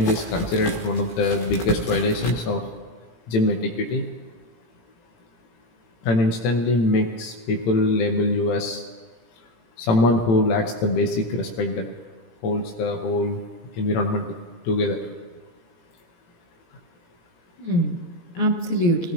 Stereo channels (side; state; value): right; late; 17 ms